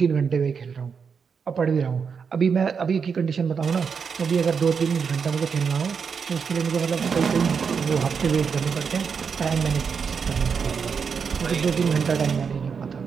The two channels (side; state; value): left; quieter; 6.1 dB